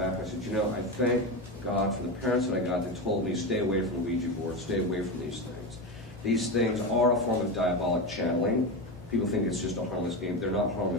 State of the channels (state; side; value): normal; both; correlation 0.18